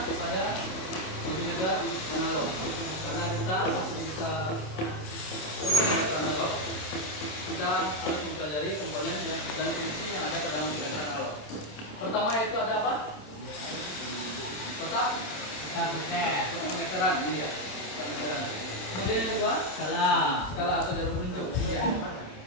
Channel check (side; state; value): right; late; 27 ms